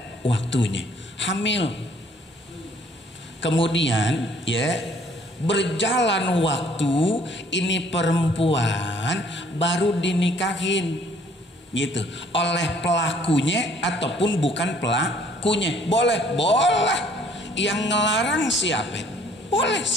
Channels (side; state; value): both; normal; correlation 0.60